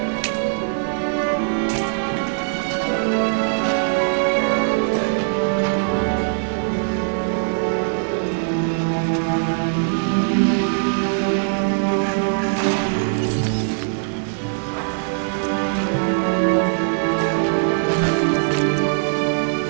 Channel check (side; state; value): left; silent; 65 dB below the other